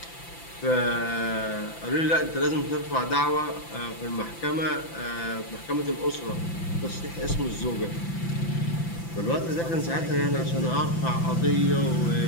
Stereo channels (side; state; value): right; late; 5.9 ms